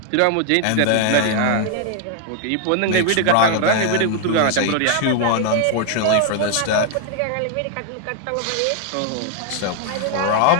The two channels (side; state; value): both; different; correlation 0.00